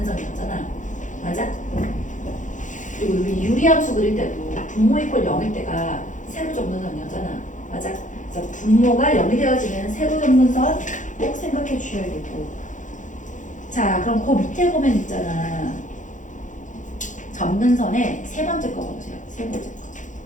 맞아? 그리고 우리 유리함수 그릴 때도 분모 이퀄 0일 때가 세로 점근선이었잖아. 맞아? 그래서 분모가 0이 되어지는 세로 점근선 꼭 생각해 주셔야겠고. 자, 그럼 그 밑에 보면 있잖아. 점근선의 세 번째 거 봐보세요. 세 번째 거.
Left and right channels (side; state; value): right; late; 0.36 ms